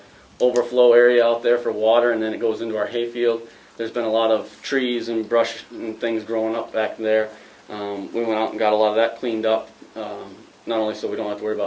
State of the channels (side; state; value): both; identical; correlation 1.00